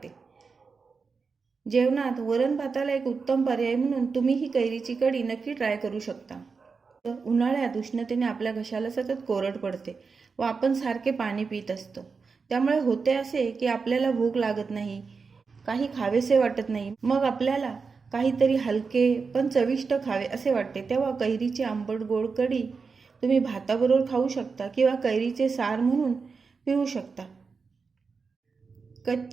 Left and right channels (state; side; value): quieter; left; 5.0 dB